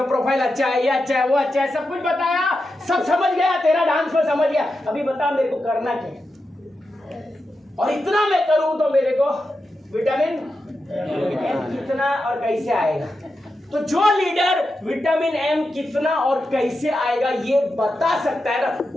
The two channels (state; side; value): normal; both; correlation 0.89